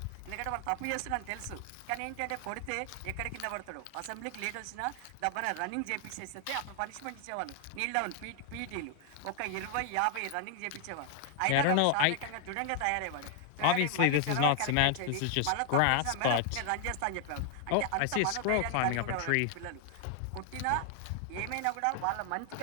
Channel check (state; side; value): different; both; correlation 0.00